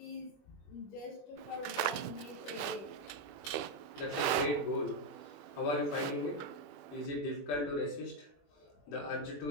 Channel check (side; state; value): right; late; 21 ms